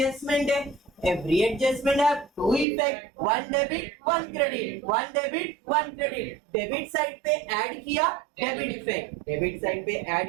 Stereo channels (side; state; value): left; drops out; at 2.7 s